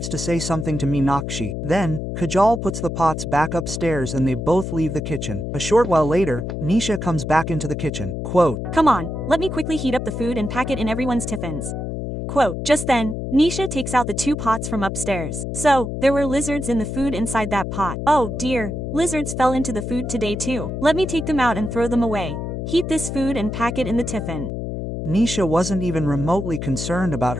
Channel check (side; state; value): left; noise; hum, 5 dB below the sound